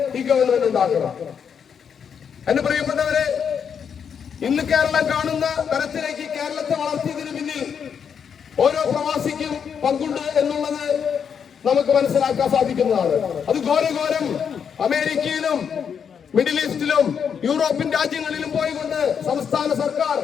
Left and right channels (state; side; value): quieter; right; 7.2 dB